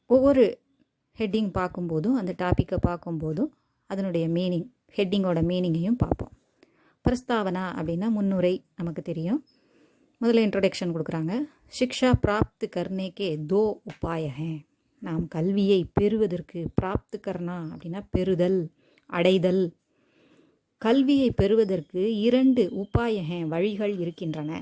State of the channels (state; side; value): identical; both; correlation 1.00